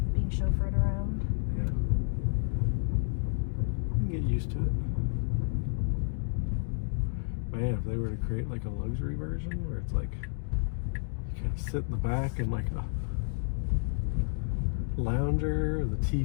Being chauffeured around. Yeah. You can get used to it. Man, if they were to create like a luxury version where it's like you kind of sit in the back and like a lounger, the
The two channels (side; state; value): right; silent; digital silence